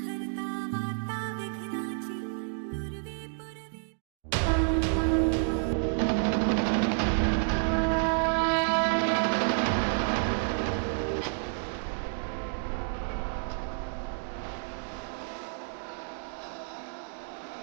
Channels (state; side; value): silent; left; digital silence